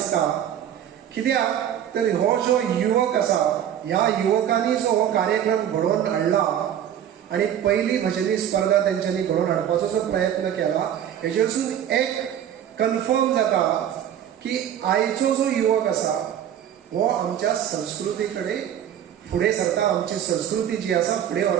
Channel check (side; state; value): left; quieter; 10.1 dB